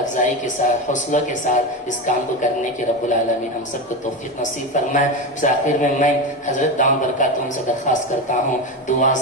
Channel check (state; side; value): normal; both; correlation 0.18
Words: کے ساتھ، حوصلہ کے ساتھ اس کام کو کرنے کی رب العالمین ہم سب کو توفیق نصیب فرمائے۔ اس آخر میں حضرت دامت برکاتہم سے درخواست کرتا ہوں دعا